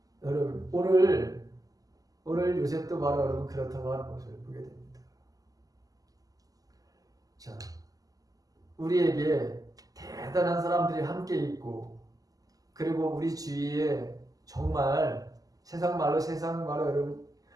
여러분 오늘 요셉도 바로 여러분 그렇다고 하는 것을 보게 됩니다. 자, 우리에게 대단한 사람들이 함께 있고 그리고 우리 주위에 정말 세상 말로 여러분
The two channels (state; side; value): late; left; 0.17 ms